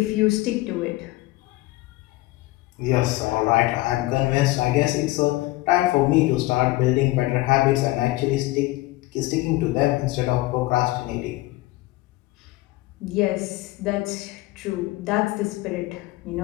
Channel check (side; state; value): right; quieter; 19.2 dB